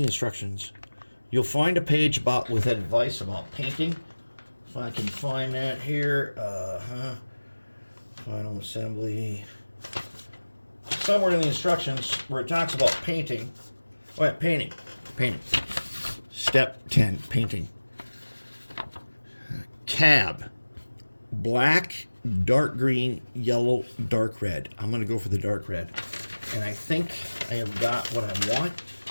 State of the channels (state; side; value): inverted; both; correlation -1.00